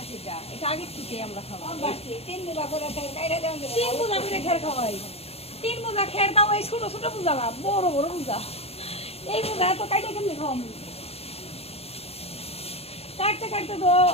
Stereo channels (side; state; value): right; late; 0.29 ms